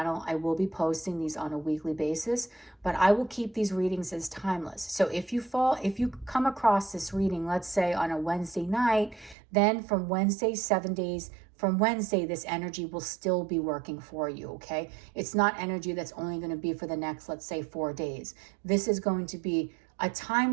I will be posting these on a weekly basis, but I will keep these readings as timeless. So if you come across this reading, let's say on a Wednesday night, then from Wednesday, 7 days from Wednesday, this energy will still be working for you, okay? It's not energy that's only going to be for the next, let's say, 4 days. This is going to be a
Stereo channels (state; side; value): drops out; left; at 9.3 s